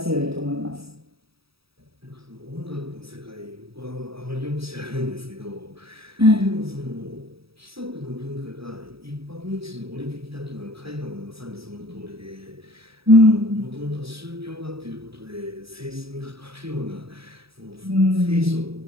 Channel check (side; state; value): left; late; 0.77 ms